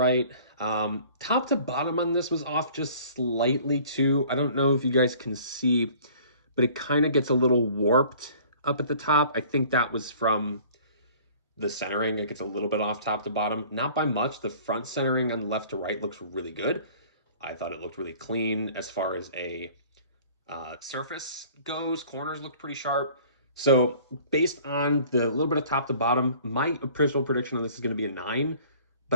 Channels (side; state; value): both; inverted; correlation -0.50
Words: Top to bottom on this was off just slightly too. I don't know if you guys can see, but it kind of gets a little warped up at the top. I think that was from the centering. It gets a little bit off top to bottom, not by much. The front centering on left to right looks really good. I thought it looked really clean as far as a surface goes. Corners looked pretty sharp. So based on the little bit of top to bottom, my personal prediction on this is going to be a 9,